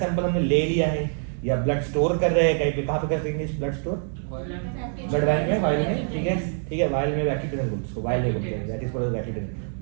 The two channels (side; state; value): left; silent; 62 dB below the other